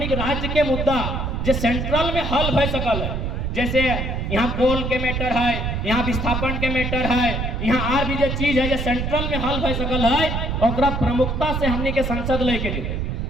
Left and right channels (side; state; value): right; noise; rumble, 2 dB below the sound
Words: के राज्य के मुद्दा जो सेंट्रल में हल भय सकल है, जैसे यहाँ कोल के मैटर है, यहाँ विस्थापन के मैटर है, यहाँ और भी जो चीज है जो सेंट्रल में हल भय सकल है, और प्रमुखता से हमने के संसद लेके जीते।